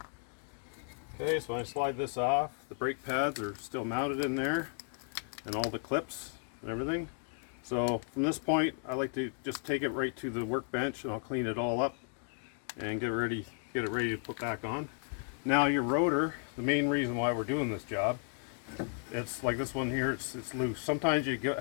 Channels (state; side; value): silent; right; 55 dB below the other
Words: Okay, so when I slide this off, the brake pads are still mounted in there, and all the clips and everything. So from this point, I like to just take it right to the workbench, and I'll clean it all up and get it ready to put back on. Now your rotor, the main reason why we're doing this job, it's like this one here, it's loose. Sometimes you